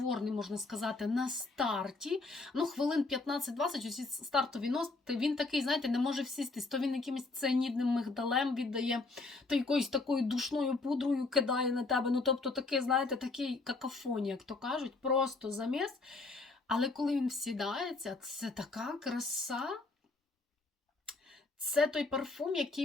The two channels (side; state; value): right; quieter; 3.6 dB